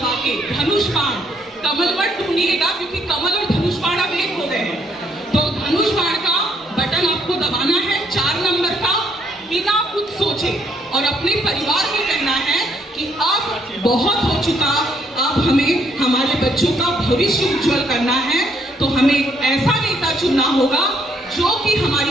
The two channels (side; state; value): both; normal; correlation 0.69